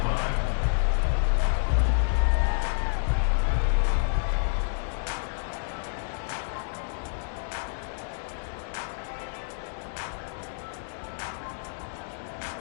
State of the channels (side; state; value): right; silent; digital silence